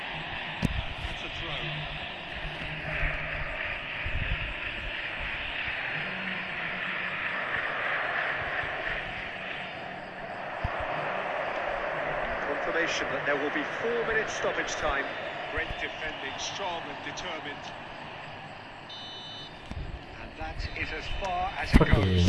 That's a indication that there will be 4 minutes stoppage time. Great defending, strong and determined. And that is as far as it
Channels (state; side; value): identical; both; correlation 1.00